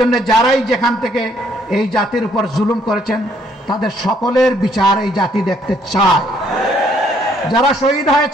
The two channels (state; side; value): normal; both; correlation 0.67